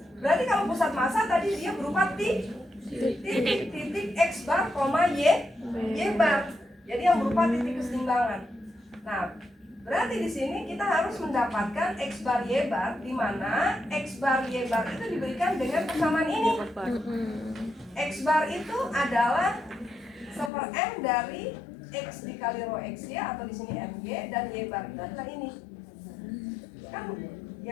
Berarti kalau pusat massa tadi dia berupa titik X bar, Y bar. Jadi yang berupa titik keseimbangan. Nah, berarti di sini kita harus mendapatkan X bar Y bar, di mana X bar Y bar itu diberikan dengan persamaan ini. X bar itu adalah 1/m dari X dikali rho X ya, atau di sini MY, dan Y bar itu adalah ini. Kan?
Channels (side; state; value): right; drops out; at 20.5 s